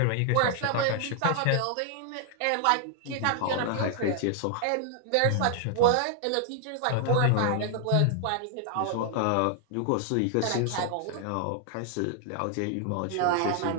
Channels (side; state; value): both; different; correlation 0.00